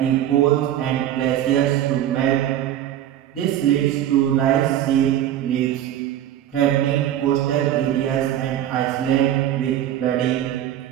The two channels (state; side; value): quieter; left; 11.7 dB